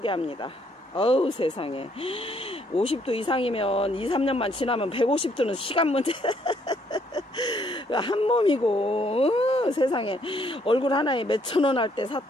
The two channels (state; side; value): normal; both; correlation 0.68